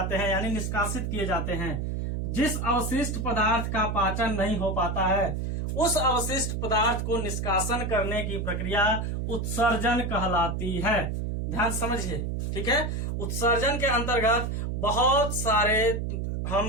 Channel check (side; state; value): right; noise; hum, 2 dB below the sound